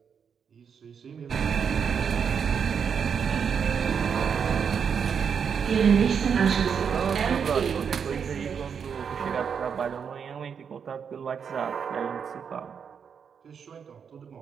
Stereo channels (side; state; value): left; quieter; 6.9 dB